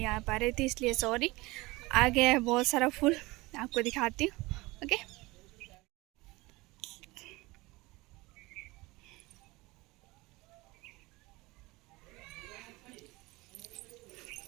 आ पा रही थी इसलिए सॉरी। आ गया है बहुत सारा फूल, आपको दिखाती हूँ। ओके,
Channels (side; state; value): left; quieter; 21.9 dB